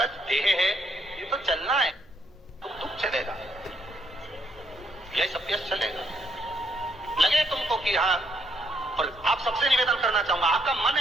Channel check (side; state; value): both; normal; correlation 0.72